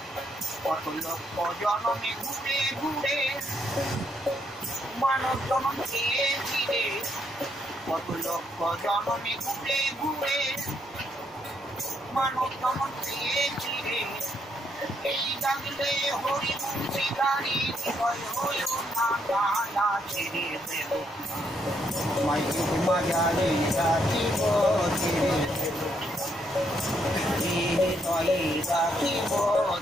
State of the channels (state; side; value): normal; both; correlation 0.74